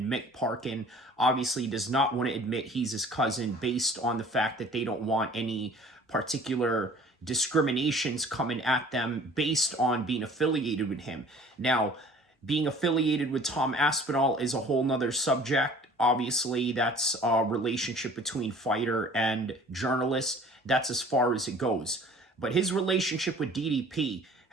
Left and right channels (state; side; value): normal; both; correlation 0.49